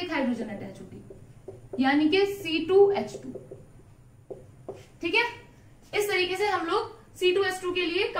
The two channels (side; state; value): both; identical; correlation 1.00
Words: हाइड्रोजन अटैच होगी, यानी कि C2H2, ठीक है। इस तरीके से हम लोग C2H2 के लिए